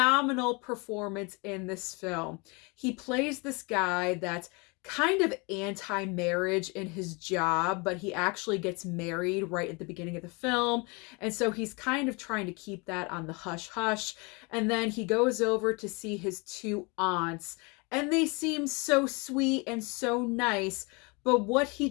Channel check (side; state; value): right; quieter; 29.3 dB